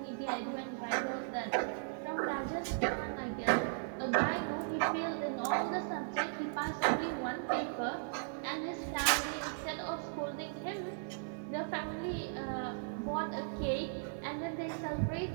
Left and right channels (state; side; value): silent; left; digital silence